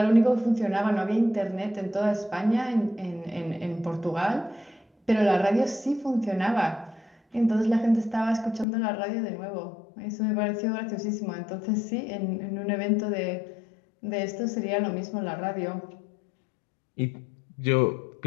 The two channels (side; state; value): right; drops out; at 8.7 s